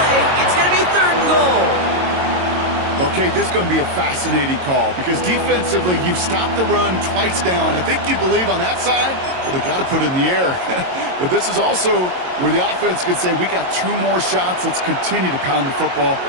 It's going to be 3rd and goal. Okay, this is going to be a fascinating call because defensively, you've stopped the run twice down. I think you believe on that side, well, they got to put it in the air. But this is also where the offense could say, we got 2 more shots. Let's continue to pound the football.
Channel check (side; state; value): left; late; 22 ms